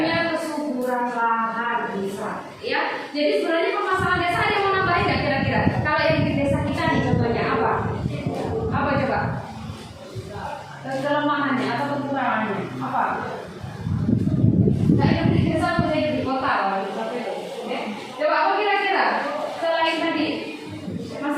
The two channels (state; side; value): identical; both; correlation 1.00